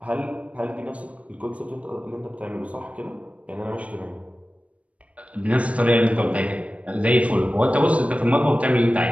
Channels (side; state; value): left; late; 0.065 ms